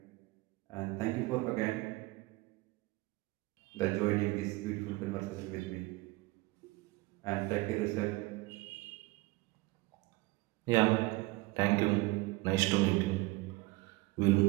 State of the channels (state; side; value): quieter; left; 21.6 dB